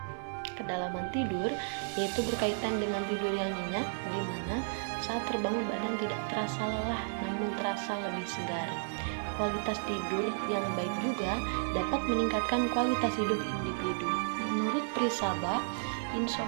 Kedalaman tidur yaitu berkaitan dengan tidur yang nyenyak, di mana saat terbangun badan tidak terasa lelah namun terasa lebih segar. Kualitas tidur yang baik juga dapat meningkatkan kualitas hidup individu. Menurut Prisaba,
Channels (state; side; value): silent; left; digital silence